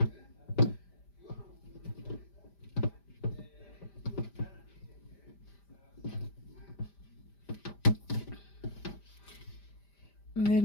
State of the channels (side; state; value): right; late; 5.1 ms